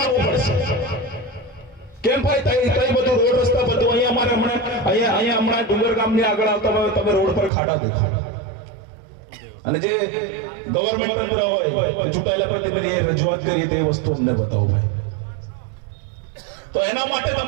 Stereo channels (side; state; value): left; drops out; at 7.5 s